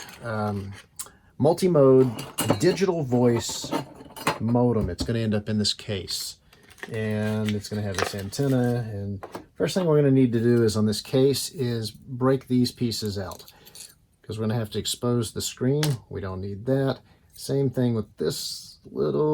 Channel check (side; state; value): both; identical; correlation 1.00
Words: multi-mode digital voice modem. It's going to end up in this case. And it's going to have this antenna. And first thing we're going to need to do is on this case is break these pieces out, because we're going to have to expose the screen. We don't need that. Same thing with this